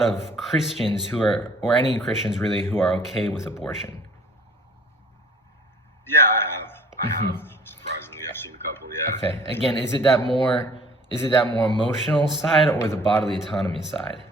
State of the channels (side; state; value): both; normal; correlation 0.52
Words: of Christians who are, or any Christians really, who are okay with abortion? Yeah, I have. Surprisingly, I've seen a couple. Yeah. Okay. Again, is it that more emotional side or the bodily autonomy side